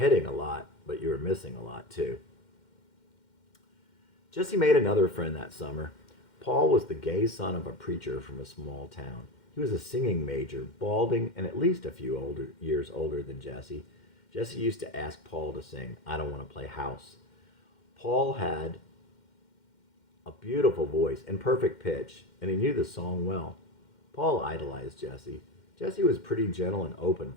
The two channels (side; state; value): right; late; 2.1 ms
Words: a lot, but you were missing a lot too. Jesse made another friend that summer. Paul was the gay son of a preacher from a small town. He was a singing major, balding, and at least a few years older than Jesse. Jesse used to ask Paul to sing, "I Don't Want to Play House." Paul had a beautiful voice and perfect pitch, and he knew the song well. Paul idolized Jesse. Jesse was pretty gentle and open